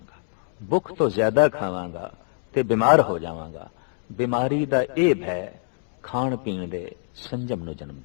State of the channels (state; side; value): silent; right; digital silence